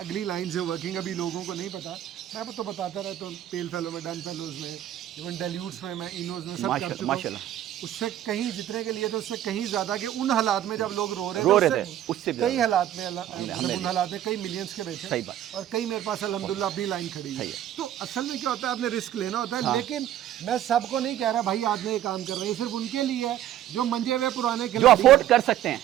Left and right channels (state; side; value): quieter; left; 12.0 dB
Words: अगली लाइन से वर्किंग, अभी लोगों को नहीं पता, मैं तो बताता रहता हूँ, पेल फेलो में, डन फेलोज में, इवन डेल्यूट्स में, मैं इनोज में सब कर चुका हूँ। उससे कहीं जितने के लिए तो उससे कहीं ज़्यादा कि उन हालात में जब लोग रो रहे थे उससे कई हालात में उन हालात में कई मिलियंस के बेचे। सही बात। और कई मेरे पास अल्हम्दुलिल्लाह अपनी लाइन खड़ी है। तो असल में क्या होता है, आपने रिस्क लेना होता है। लेकिन मैं सबको नहीं कह रहा भाई आज ये काम कर रहे हैं, सिर्फ उनके लिए है जो मंजे हुए पुराने जो अफोर्ड कर सकते हैं,